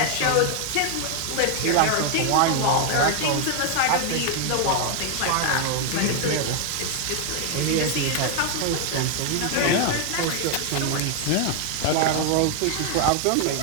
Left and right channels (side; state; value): both; different; correlation 0.00